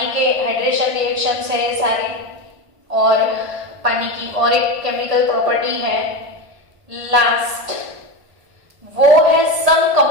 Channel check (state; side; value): late; left; 1.8 ms